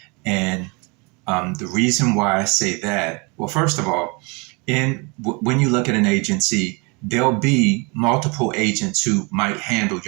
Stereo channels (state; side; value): quieter; left; 29.7 dB